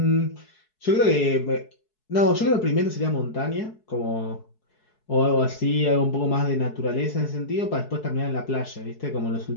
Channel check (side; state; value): right; late; 4.7 ms